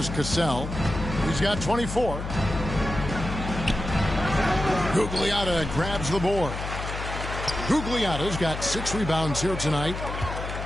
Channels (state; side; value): noise; left; hum, 6 dB below the sound